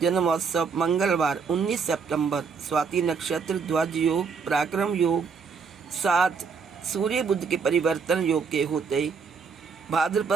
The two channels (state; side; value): quieter; left; 5.5 dB